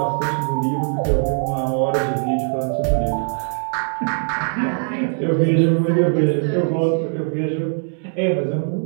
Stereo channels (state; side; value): silent; left; 65 dB below the other